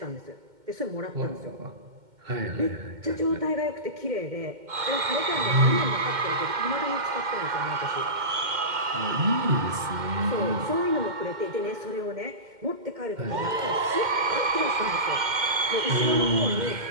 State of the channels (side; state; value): left; late; 2.1 ms